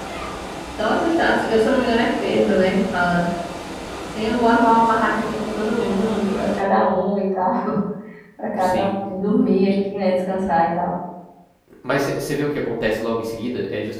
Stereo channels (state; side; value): identical; both; correlation 1.00